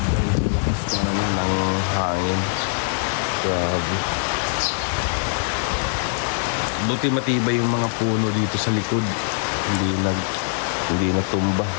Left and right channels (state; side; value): silent; right; 64 dB below the other